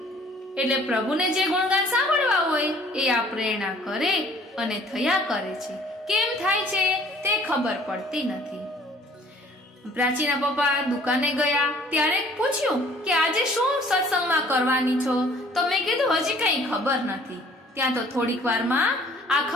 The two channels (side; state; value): both; normal; correlation 0.54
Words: એટલે પ્રભુને જે ગુણગાન સાંભળવા હોય એ આ પ્રેરણા કરે અને થયા કરે છે. કેમ થાય છે તે ખબર પડતી નથી. પ્રાચીના પપ્પા દુકાને ગયા ત્યારે પૂછ્યું કે આજે શું સત્સંગમાં કરવાની છો? તો મેં કીધું હજી કઈ ખબર નથી. ત્યાં તો થોડીક વારમાં આ